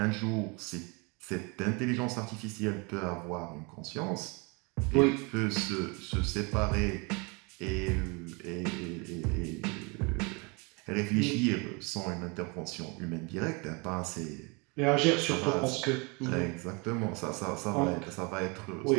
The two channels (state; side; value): quieter; left; 30.1 dB